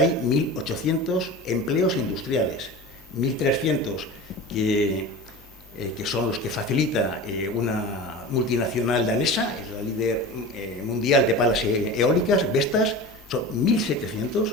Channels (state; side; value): normal; both; correlation 0.32